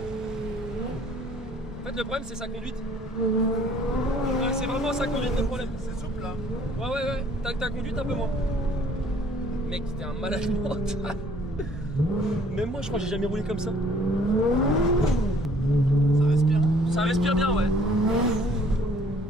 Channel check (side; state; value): both; normal; correlation 0.58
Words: fait, le problème, c'est sa conduite. Ouais, c'est vraiment sa conduite le problème. C'est souple là. Ouais. Ta conduite un peu moins. Mec, t'es un malade mental. Même moi, je crois que j'ai jamais roulé comme ça. Ça respire. Ça respire bien, ouais.